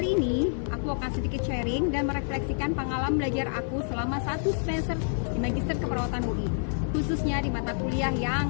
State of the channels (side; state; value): right; silent; digital silence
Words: ini, aku akan sedikit sharing dan merefleksikan pengalaman belajar aku selama 1 semester di Magister Keperawatan UI, khususnya di mata kuliah